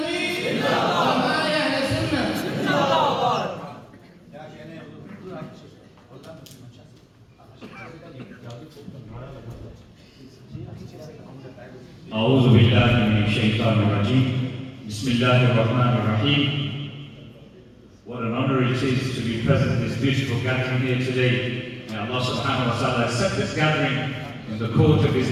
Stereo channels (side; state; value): both; identical; correlation 1.00